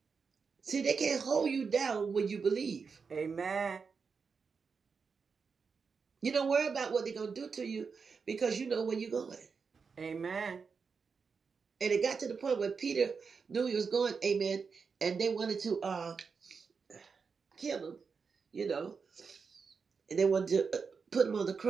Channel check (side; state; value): left; quieter; 5.4 dB